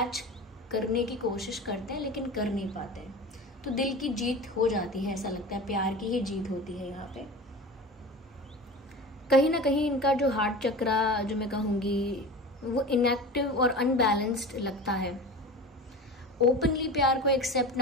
करने की कोशिश करते हैं, लेकिन कर नहीं पाते हैं। तो दिल की जीत हो जाती है, ऐसा लगता है प्यार की ही जीत होती है यहाँ पे। कहीं ना कहीं इनका जो हार्ट चक्रा जो मैं कहूँगी वो इनएक्टिव और अनबैलेंस्ड लगता है। ओपनली प्यार को एक्सेप्ट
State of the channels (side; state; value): both; normal; correlation 0.33